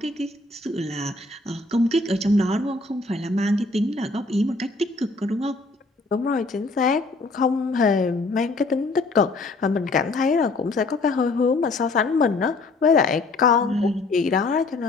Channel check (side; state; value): right; quieter; 3.3 dB